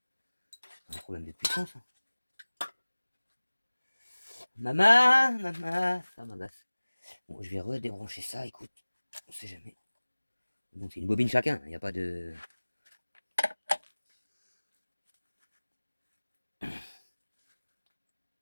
C'est un problème de puissance. Hein. Maman, ça m'agace. Bon, je vais redébrancher ça, écoute. On sait jamais. Donc c'est une bobine chacun, il n'y a pas de...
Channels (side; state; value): both; inverted; correlation -1.00